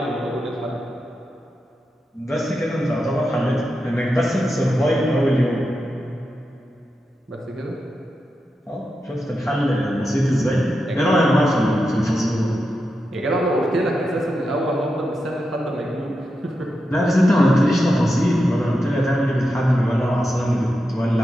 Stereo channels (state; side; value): normal; both; correlation 0.88